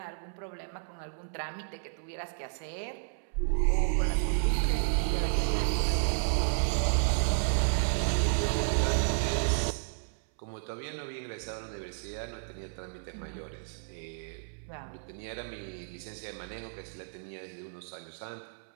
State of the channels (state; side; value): silent; left; 56 dB below the other